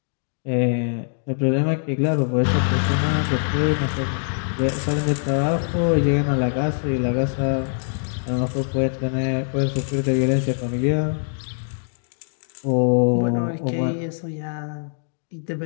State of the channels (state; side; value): silent; right; digital silence